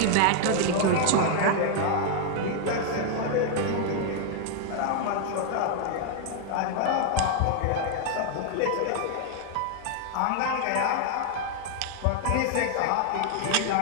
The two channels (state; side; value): different; both; correlation 0.00